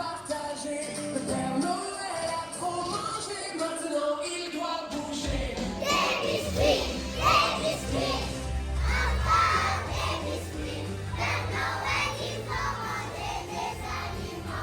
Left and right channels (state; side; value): identical; both; correlation 1.00